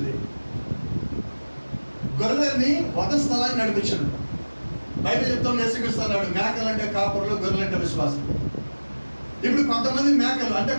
గొర్రెల్ని వధ స్థలాన్ని నడిపించాడు. బయట చెప్తాం, నేర్చుకొస్తున్నాడు మేకలంటే కాపరులు, గొర్రెలంటే విశ్వాసం. ఇప్పుడు కొంతమంది మేకలు అంటే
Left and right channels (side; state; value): both; inverted; correlation -1.00